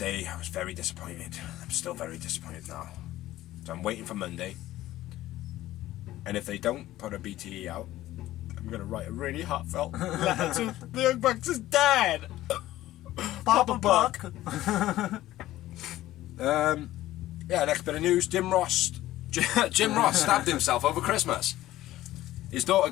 I was very disappointed. I'm still very disappointed now. So I'm waiting for Monday. And if they don't put a BTE out, I'm going to write a really heartfelt letter to the Young Bucks' dad. Papa Buck. Yeah, next bit of news. Jim Ross stabbed himself over Christmas. His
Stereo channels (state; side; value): quieter; right; 15.1 dB